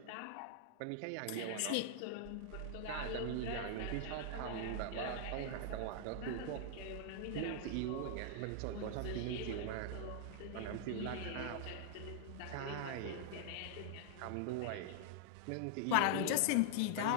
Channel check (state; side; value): different; both; correlation -0.01